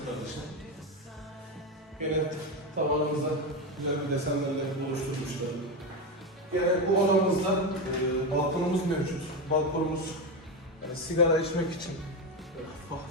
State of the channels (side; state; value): both; normal; correlation 0.14